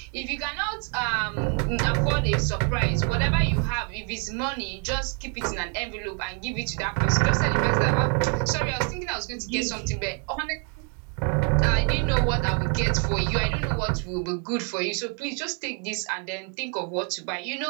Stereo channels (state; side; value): quieter; left; 40.0 dB